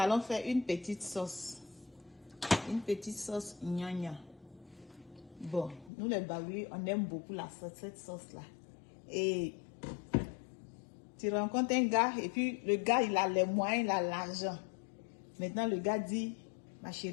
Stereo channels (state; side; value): drops out; right; at 5.9 s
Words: faire une petite sauce. Une petite sauce gnagna. Bon, nous les Baoui, on aime beaucoup cette sauce-là. Et tu rencontres un gars, et puis le gars, il a les moyens, il a l'argent. Maintenant, le gars dit, ma